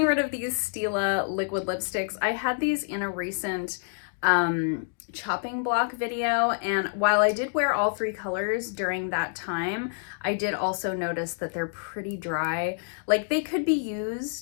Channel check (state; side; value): silent; right; digital silence